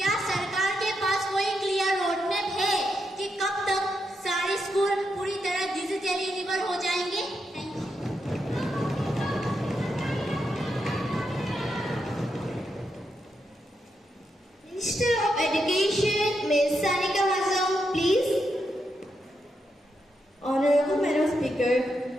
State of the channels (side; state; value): both; normal; correlation 0.83